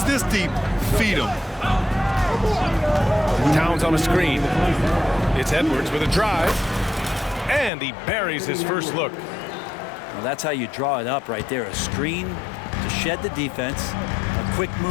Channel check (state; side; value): drops out; right; at 7.7 s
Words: this deep, feed him. Towns on a screen. It's Edwards with a drive. And he buries his first look. Well, that's how you draw it up right there. A screen to shed the defense, a quick